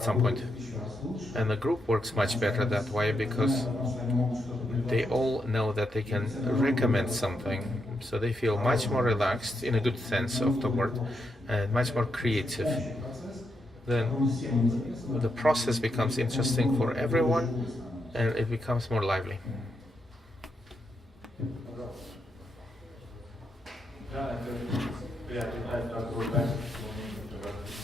some point. And the group works much better that way, because they all know that they can recommend something, so they feel much more relaxed, in a good sense of the word, and much more creative. Then the process becomes interesting for everyone, and it becomes more lively.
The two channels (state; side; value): normal; both; correlation 0.82